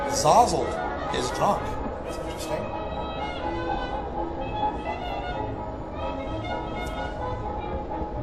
Zozzled is drunk. That's interesting.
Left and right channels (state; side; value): identical; both; correlation 1.00